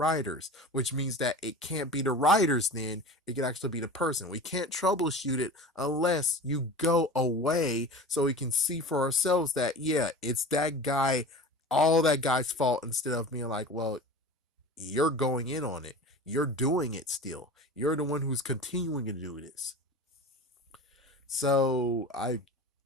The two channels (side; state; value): both; normal; correlation 0.35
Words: which means that it can't be the writers then, it can actually be the person. We can't troubleshoot it unless you go away so we can see for ourselves that, yeah, it's that guy, all that guy's fault, instead of being like, well, you're going in on it. You're doing it still. You're the one who's continuing to do this. So